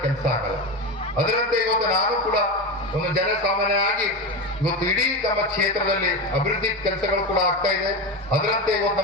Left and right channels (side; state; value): both; normal; correlation 0.19